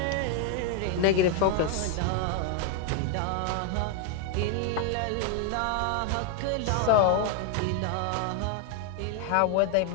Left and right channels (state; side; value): different; both; correlation 0.00